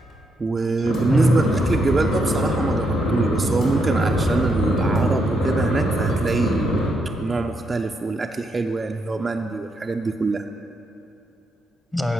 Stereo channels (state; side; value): normal; both; correlation 0.79